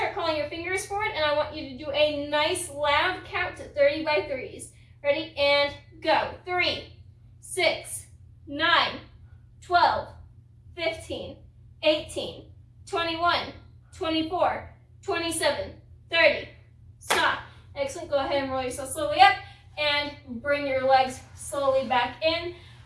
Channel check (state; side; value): identical; both; correlation 1.00